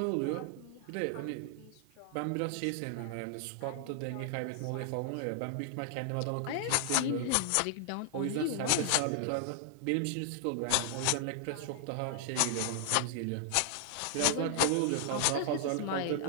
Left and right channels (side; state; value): both; different; correlation 0.00